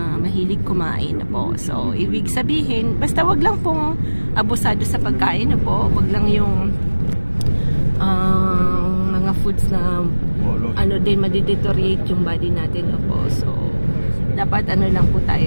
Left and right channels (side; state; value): both; inverted; correlation -1.00